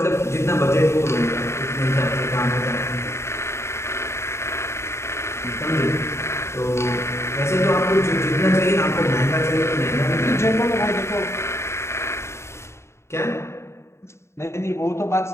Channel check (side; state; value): right; late; 0.13 ms